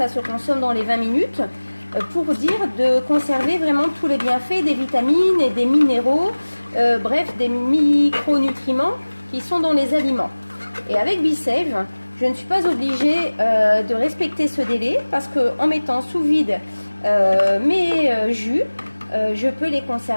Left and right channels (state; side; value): inverted; both; correlation -1.00